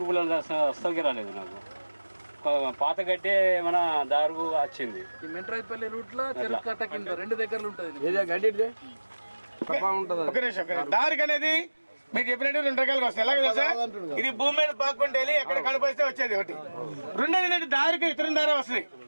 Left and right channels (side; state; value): both; inverted; correlation -1.00